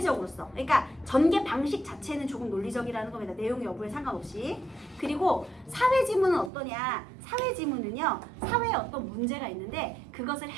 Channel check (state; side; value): drops out; left; at 6.5 s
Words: 써. 그러니까 전개 방식 자체는 조금 논리적이라는 겁니다. 내용 여부에 상관없이. 그리고 사회지문은 어떠냐? 사회지문은요. 사회에 어떤 문제가 있는데 그것을